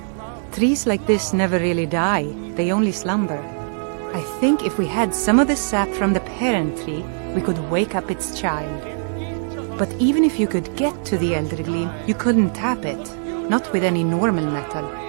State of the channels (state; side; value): silent; left; digital silence